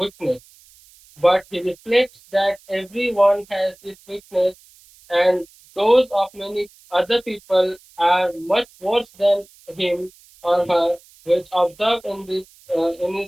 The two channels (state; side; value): noise; right; hiss, 27 dB below the sound